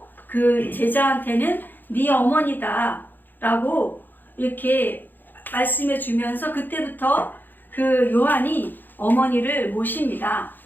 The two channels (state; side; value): late; right; 0.089 ms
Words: 그 제자한테는 네 어머니다 라고 이렇게 말씀해 주면서 그때부터 그 요한이 어머니를 모십니다.